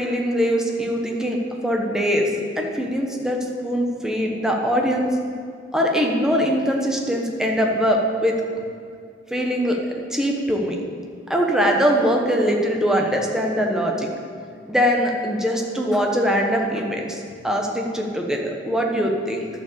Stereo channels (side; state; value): both; normal; correlation 0.58